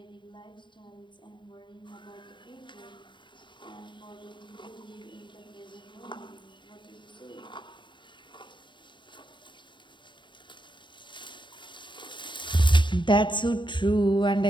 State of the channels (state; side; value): late; right; 0.23 ms